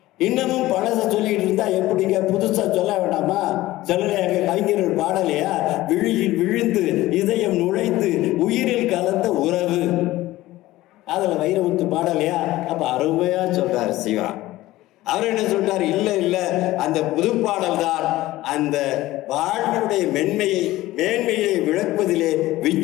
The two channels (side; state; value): right; quieter; 17.0 dB